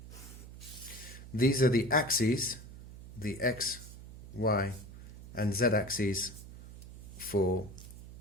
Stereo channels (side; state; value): right; noise; hum, 15 dB below the sound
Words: These are the axes, the X, Y, and Z axes for